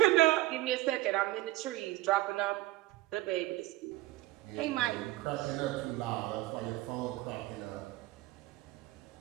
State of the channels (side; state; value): left; quieter; 17.5 dB